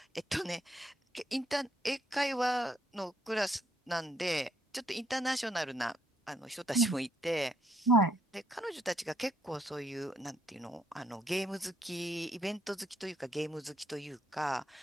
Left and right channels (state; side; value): normal; both; correlation 0.71